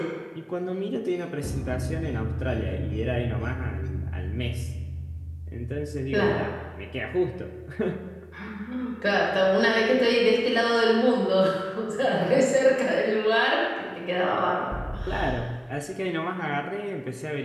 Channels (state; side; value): identical; both; correlation 1.00